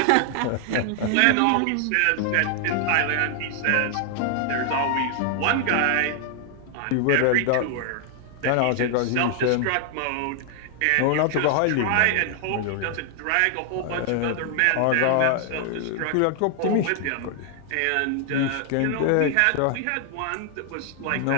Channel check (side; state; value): both; different; correlation 0.00